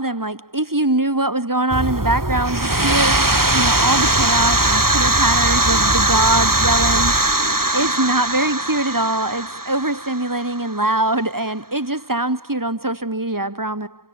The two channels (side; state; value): left; late; 0.93 ms